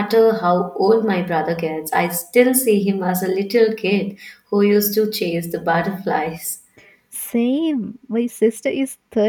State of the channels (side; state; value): both; identical; correlation 1.00